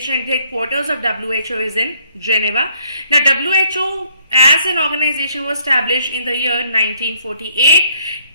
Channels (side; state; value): both; inverted; correlation -0.66